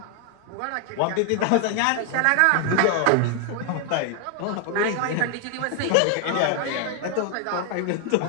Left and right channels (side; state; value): both; different; correlation 0.00